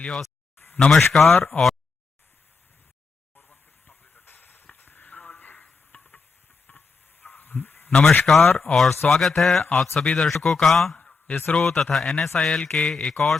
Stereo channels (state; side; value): quieter; right; 4.5 dB